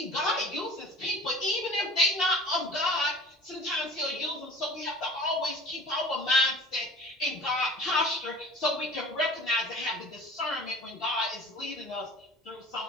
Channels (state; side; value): normal; both; correlation 0.43